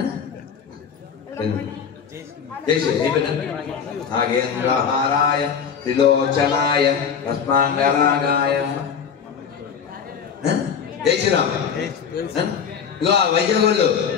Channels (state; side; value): quieter; right; 7.1 dB